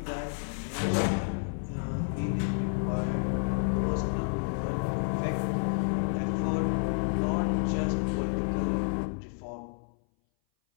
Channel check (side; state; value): right; silent; 58 dB below the other